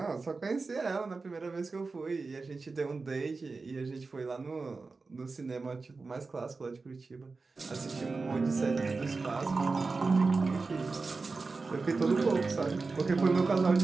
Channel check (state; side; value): quieter; left; 4.0 dB